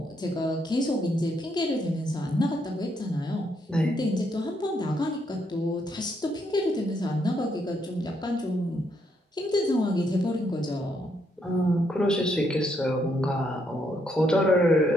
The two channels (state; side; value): normal; both; correlation 0.75